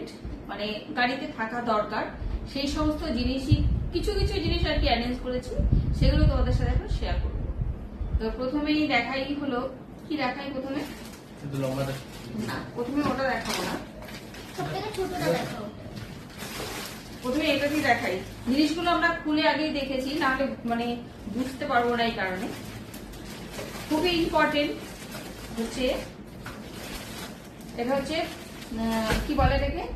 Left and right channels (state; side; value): identical; both; correlation 1.00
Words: মানে গাড়িতে থাকা দরকার। সেই সমস্ত জিনিসই কিছু কিছু জিনিস আর কি অ্যারেঞ্জ করেছি, সেগুলো তোমাদের সাথে এখন শেয়ার করব। তো প্রথমেই দেখাই হলো, কি দেখাই প্রথমে? না, প্রথমে ওটা দেখাবো না, প্রথমে এটাকে দেখাই। জিনিসগুলো আমরা খুলে আগেই দেখেছি, নাহলে মানে বুঝতে পারবো না। এই কারণে খুবই ইম্পর্টেন্ট হচ্ছে এটা হচ্ছে কি বলে এটাকে,